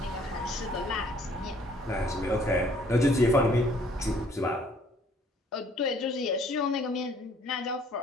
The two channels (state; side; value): normal; both; correlation 0.60